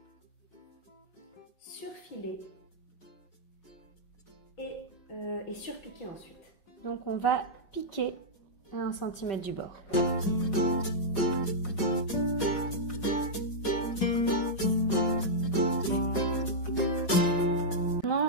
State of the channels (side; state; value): right; late; 5.4 ms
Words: surfiler et surpiquer ensuite. Donc on va piquer à 1 cm du bord.